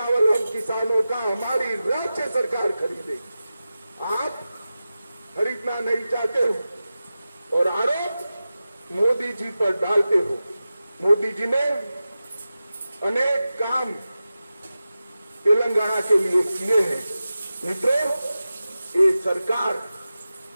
हम किसानों का हमारी राज्य सरकार खरीदेगी। आप खरीदना नहीं चाहते हो और आरोप मोदी जी पर डालते हो। मोदी जी ने अनेक काम तेलंगाना के लिए किए हैं। मित्रों, ये सरकार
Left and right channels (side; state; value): both; inverted; correlation -0.94